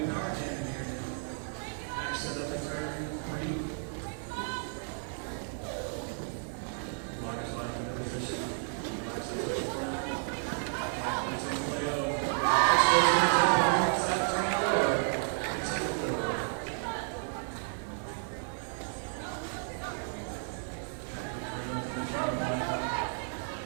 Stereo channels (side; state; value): left; silent; 56 dB below the other